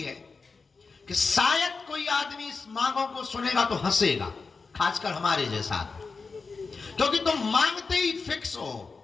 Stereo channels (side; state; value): right; quieter; 4.5 dB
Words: है कि शायद कोई आदमी इस मांगों को सुनेगा तो हंसेगा, खासकर हमारे जैसा, क्योंकि तुम मांगते ही फिक्स हो।